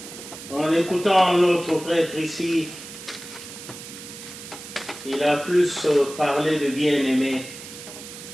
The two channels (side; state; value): right; noise; hiss, 13 dB below the sound